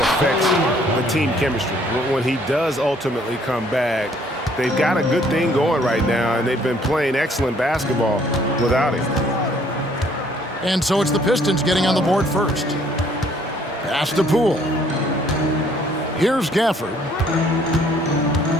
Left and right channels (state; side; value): normal; both; correlation 0.62